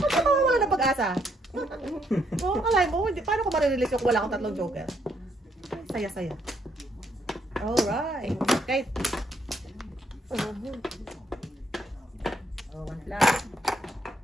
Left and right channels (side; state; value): both; normal; correlation 0.73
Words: ka mawawala ng pag-asa. Oo, kalay mo, paano ko marirelease yung wala akong tatlong joker? Saya-saya. Alright. Okay. Oh, one flag.